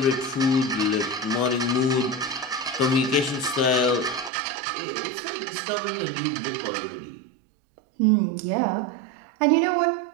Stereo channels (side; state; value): left; drops out; at 4.3 s